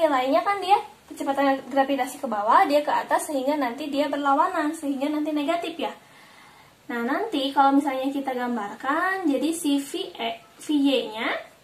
kan dia kecepatan gravitasi ke bawah, dia ke atas, sehingga nanti dia berlawanan, sehingga nanti negatif ya. Nah, nanti kalau misalnya kita gambarkan, jadi si VY-nya,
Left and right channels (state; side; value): identical; both; correlation 1.00